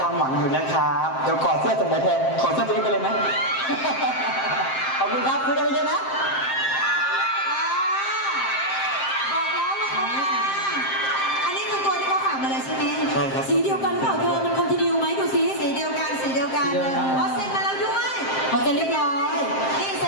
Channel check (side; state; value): right; late; 7.6 ms